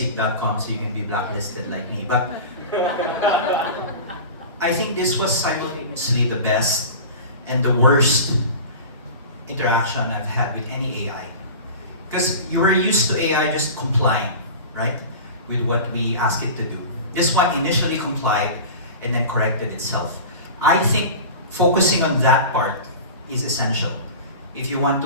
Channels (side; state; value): both; inverted; correlation -0.34